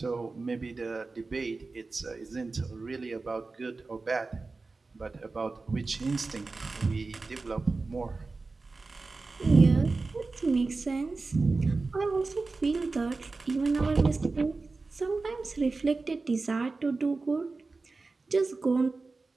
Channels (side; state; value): left; quieter; 3.8 dB